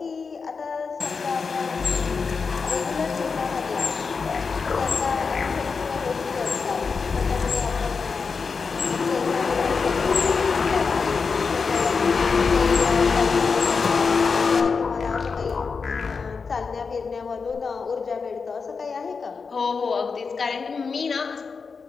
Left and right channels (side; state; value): right; quieter; 5.1 dB